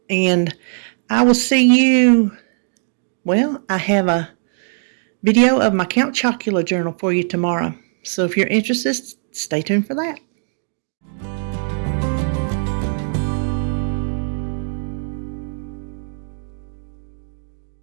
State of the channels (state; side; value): silent; left; digital silence